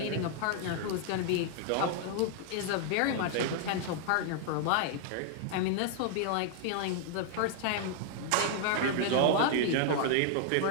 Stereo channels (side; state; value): both; different; correlation 0.00